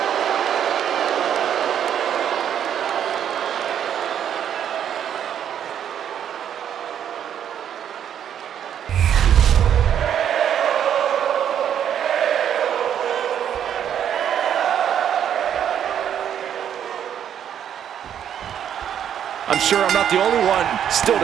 I'm sure I'm not the only one still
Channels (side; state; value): left; quieter; 9.4 dB